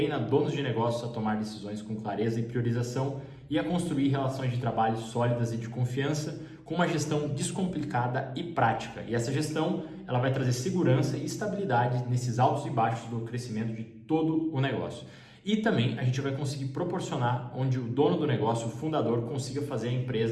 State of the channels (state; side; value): identical; both; correlation 1.00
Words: donos de negócios a tomar decisões com clareza e priorização e a construir relações de trabalho sólidas e de confiança com uma gestão descomplicada e prática. E essa gestão, ela vai trazer segurança e estabilidade nesses altos e baixos do crescimento de todo o negócio. E também a gente vai conseguir proporcionar onde o dono do negócio, o fundador, consiga fazer a